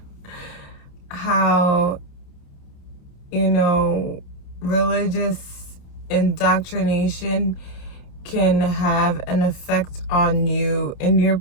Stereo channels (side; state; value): right; late; 28 ms